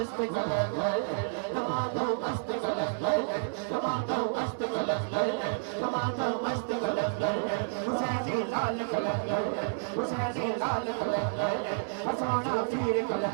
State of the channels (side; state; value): left; silent; 58 dB below the other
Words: कलंद तमादा मस्त कलंद तमादा मस्त कलंद तमादा मस्त कलंद। हुसैनी लाल कलंद हुसैनी लाल कलंद। सोना पीर